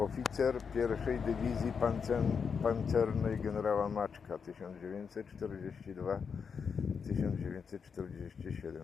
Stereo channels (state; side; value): quieter; right; 6.1 dB